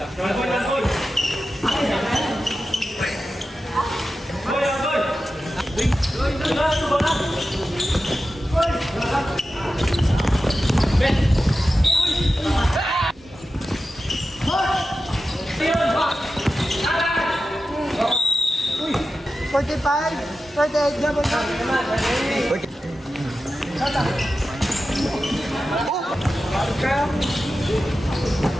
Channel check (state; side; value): normal; both; correlation 0.92